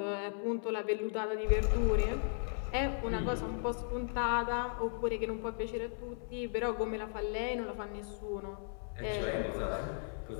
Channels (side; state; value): right; silent; 54 dB below the other